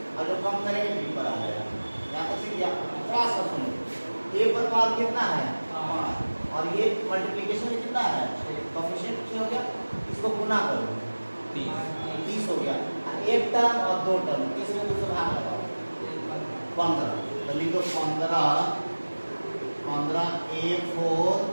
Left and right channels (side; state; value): both; inverted; correlation -1.00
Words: और जो कम करेंगे बी पर आ जाएगा। यहाँ तक सीख गया? थोड़ा सा सुनो, ए पर पावर कितना है? 5, और ये मल्टीप्लिकेशन में कितना है? कोएफिशिएंट हो गया, इसको गुना करो 30 हो गया। एक टर्म और 2 टर्म, इसमें दूसरा भाग लगाओ 15। तो लिखो 15 a4,